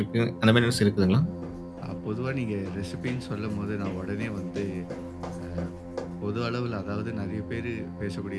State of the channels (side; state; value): both; identical; correlation 1.00